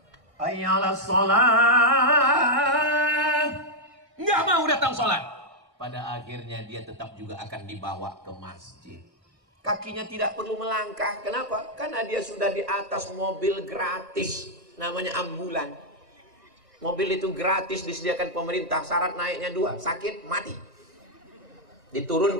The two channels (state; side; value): late; left; 1.6 ms